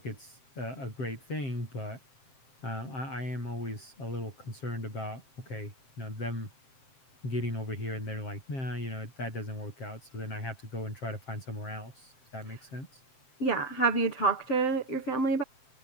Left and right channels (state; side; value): late; right; 7.6 ms